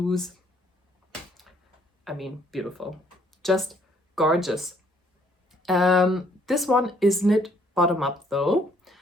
I mean, beautiful. Just gorgeous. This one is knit bottom up though,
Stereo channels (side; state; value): both; normal; correlation 0.65